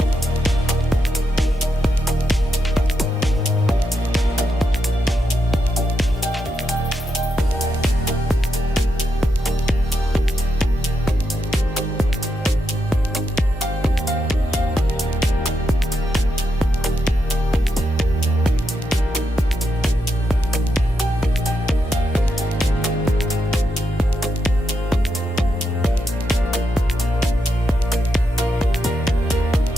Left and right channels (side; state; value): both; normal; correlation 0.83